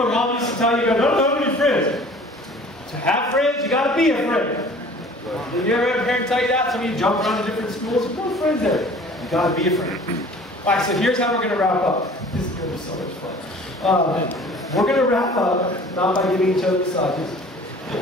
Mom used to tell you, don't have any friends. To have friends, you got to be a friend. Did you ever have a parent tell you that? Some of you jump around to different schools. There's no friends there. You got to be a friend. All right, so here's how we're going to wrap up. This is going to be so much fun. We're going to wrap up not by giving each other massages.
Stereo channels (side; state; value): both; normal; correlation 0.47